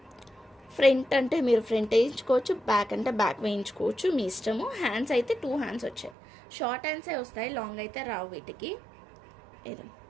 ఫ్రంట్ అంటే మీరు ఫ్రంట్ వేయించుకోవచ్చు, బ్యాక్ అంటే బ్యాక్ వేయించుకోవచ్చు, మీ ఇష్టము. హ్యాండ్స్ అయితే 2 హ్యాండ్స్ వచ్చాయి, షార్ట్ హ్యాండ్సే వస్తాయి, లాంగ్ అయితే రావు వీటికి. ఇది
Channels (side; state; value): left; drops out; at 6.2 s